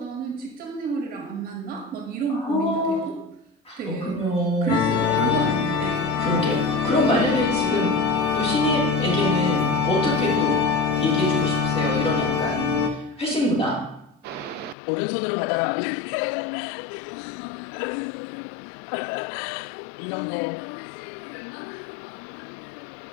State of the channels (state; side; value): drops out; right; at 14.8 s